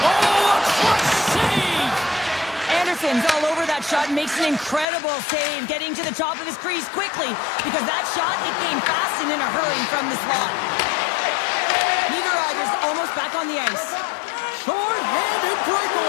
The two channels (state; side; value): drops out; right; at 4.9 s